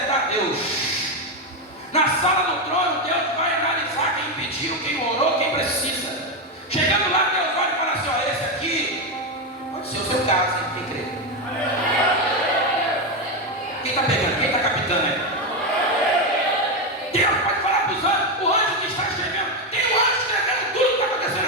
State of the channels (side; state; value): both; normal; correlation 0.09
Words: Deus. Na sala do trono, Deus vai analisar quem pediu, quem orou, quem precisa. Chegando lá, Deus vai falar assim: ó, esse aqui pode ser o seu caso, hein? Quem crê? Quem está pegando? Quem está captando aí? Deus pode falar para os anjos, o anjo que está escrevendo, tem um anjo escrevendo tudo que está acontecendo